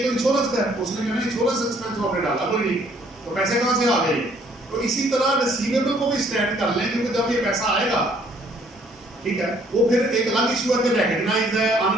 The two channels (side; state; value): both; normal; correlation 0.62